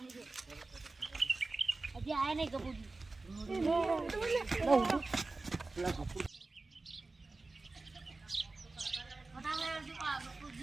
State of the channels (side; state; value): left; quieter; 3.5 dB